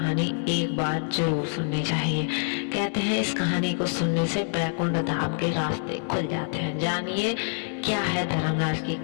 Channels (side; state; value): right; silent; 61 dB below the other